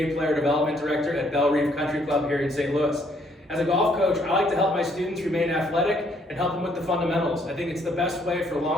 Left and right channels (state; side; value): normal; both; correlation 0.67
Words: Player Development Director at Belle Reef Country Club here in St. Louis. As a golf coach, I like to help my students remain athletic and help them with the fundamentals. I think it's the best way for